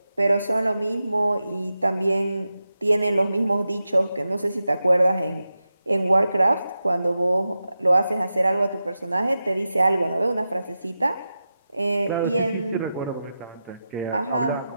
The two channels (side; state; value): both; inverted; correlation -0.91